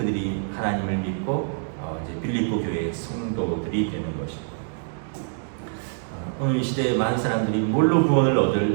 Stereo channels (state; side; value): silent; left; digital silence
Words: 하나님을 믿고 이제 빌립보 교회의 성도들이 되는 것입니다. 오늘 이 시대에 많은 사람들이 뭘로 구원을